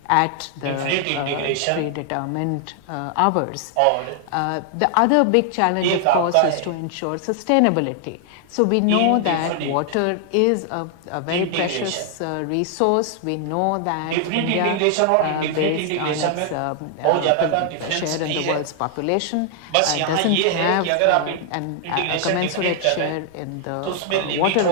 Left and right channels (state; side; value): different; both; correlation 0.00